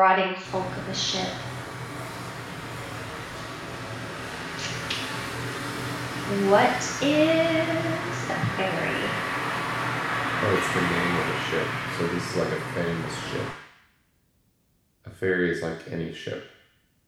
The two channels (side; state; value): both; identical; correlation 1.00